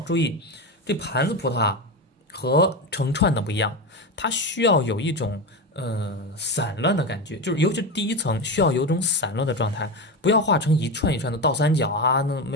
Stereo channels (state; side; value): normal; both; correlation 0.18